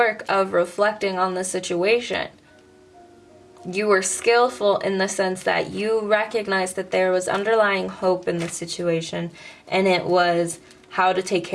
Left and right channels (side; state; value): both; identical; correlation 1.00